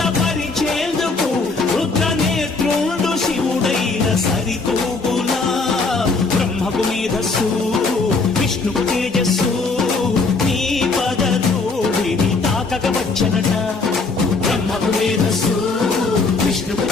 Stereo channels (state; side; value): quieter; right; 4.0 dB